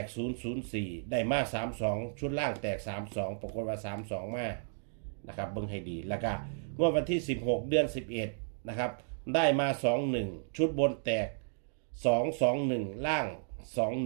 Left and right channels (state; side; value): silent; left; digital silence